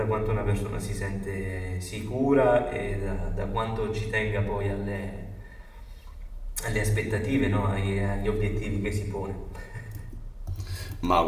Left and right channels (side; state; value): both; identical; correlation 1.00